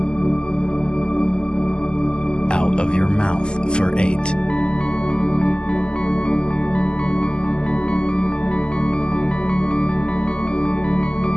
Out of your mouth for 8.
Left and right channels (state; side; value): late; right; 0.048 ms